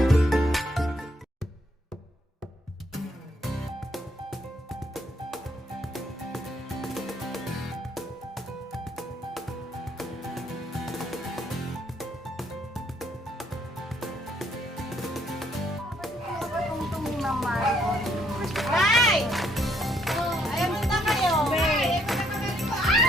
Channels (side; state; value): both; normal; correlation 0.70